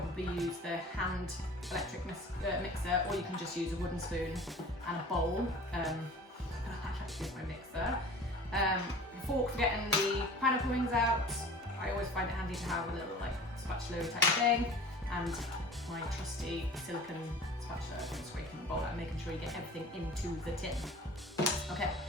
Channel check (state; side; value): normal; both; correlation 0.42